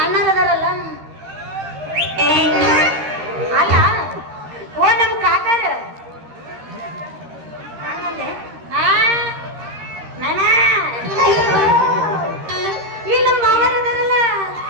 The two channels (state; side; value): late; left; 13 ms